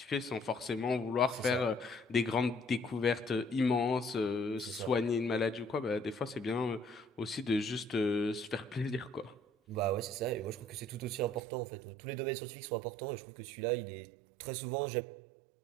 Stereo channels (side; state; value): left; drops out; at 11.4 s